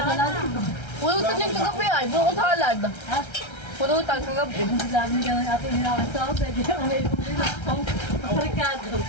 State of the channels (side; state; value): right; late; 1.3 ms